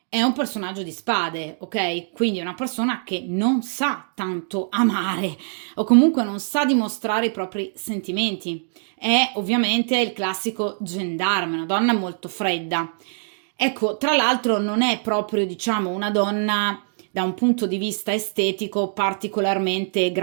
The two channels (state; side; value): silent; left; digital silence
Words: è un personaggio di spade, ok? Quindi è una persona che non sa tanto amare o comunque non sa dimostrare i propri sentimenti. È ovviamente il classico gendarme, una donna molto fredda. Ecco, tra l'altro non è proprio, diciamo, una donna da un punto di vista estetico particolarmente